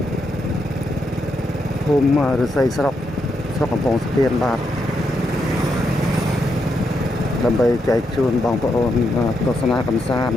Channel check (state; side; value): normal; both; correlation 0.81